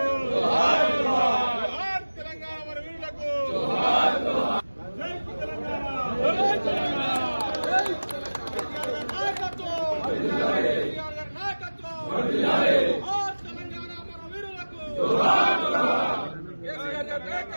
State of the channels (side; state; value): both; inverted; correlation -1.00